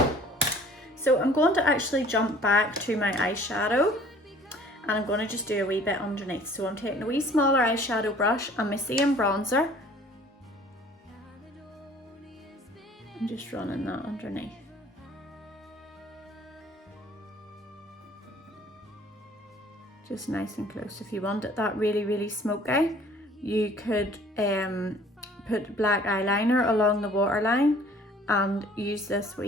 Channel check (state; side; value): normal; both; correlation 0.52